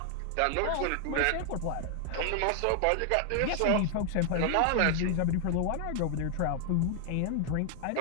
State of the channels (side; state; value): both; different; correlation 0.00